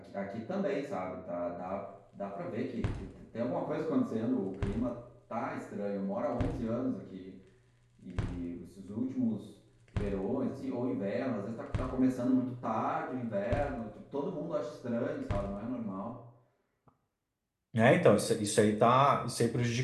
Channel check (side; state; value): both; identical; correlation 1.00